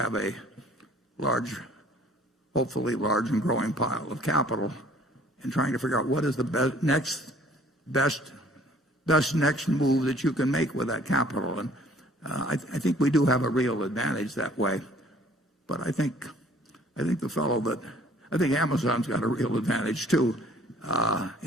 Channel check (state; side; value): normal; both; correlation 0.56